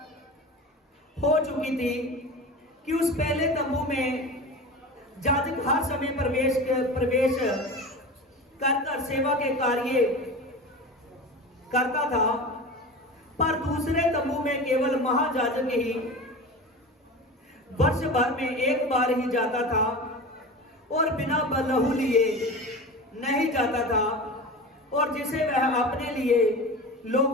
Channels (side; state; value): both; normal; correlation 0.31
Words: हो चुकी थी कि उस पहले तंबू में याजक हर समय प्रवेश कर सेवा के कार्य करता था, पर दूसरे तंबू में केवल महायाजक ही वर्ष भर में एक बार ही जाता था और बिना लहू लिए नहीं जाता था, और जिसे वह अपने लिए